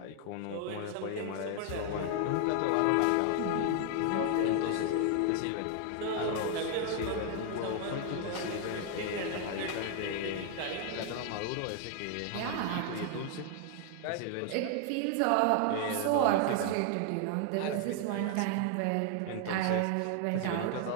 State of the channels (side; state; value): both; different; correlation 0.00